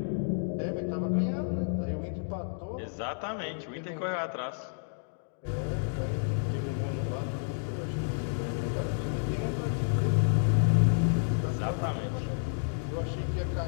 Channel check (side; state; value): right; silent; digital silence